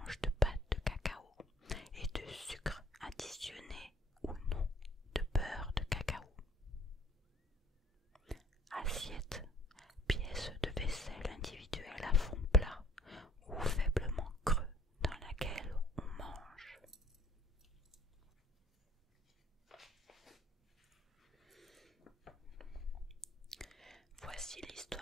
de pâte de cacao et de sucre additionné ou non de beurre de cacao. Assiette, pièce de vaisselle individuelle à fond plat ou faiblement creux dans laquelle on mange. Voici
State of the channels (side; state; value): both; normal; correlation 0.56